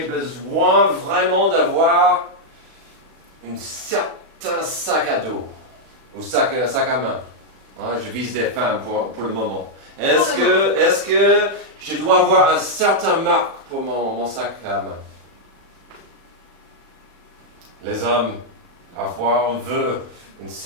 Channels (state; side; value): late; left; 36 ms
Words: vraiment d'avoir un certain sac à dos ou sac à main? Je vise des femmes pour le moment. Est-ce que je dois avoir un certain marque pour mon sac à main? Les hommes, parfois, on veut une